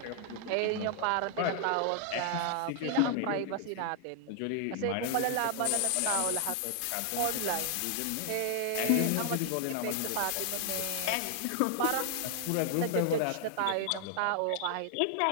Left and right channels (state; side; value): different; both; correlation 0.00